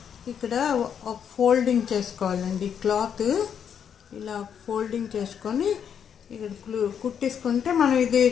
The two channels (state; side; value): quieter; right; 8.0 dB